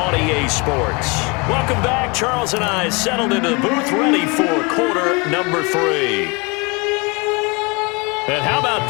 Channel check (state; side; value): quieter; right; 29.0 dB